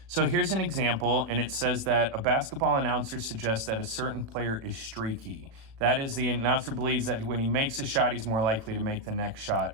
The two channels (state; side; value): late; left; 36 ms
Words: So here's an example, and it says that a basketball announcer suggests that a certain player is streaky. That is, the announcer believes that when he makes a shot, he's more likely to make the next shot,